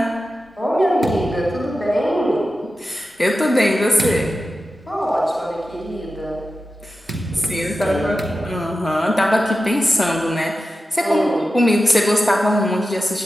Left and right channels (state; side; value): normal; both; correlation 0.92